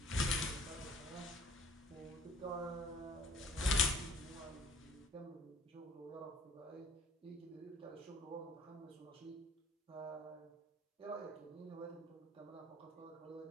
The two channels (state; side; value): normal; both; correlation 0.54